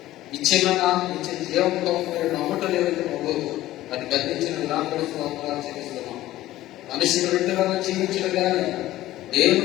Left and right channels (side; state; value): right; quieter; 15.3 dB